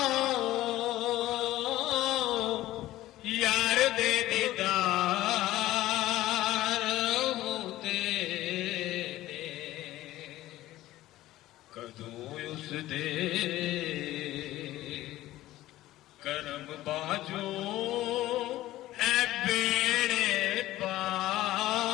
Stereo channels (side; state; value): right; quieter; 15.7 dB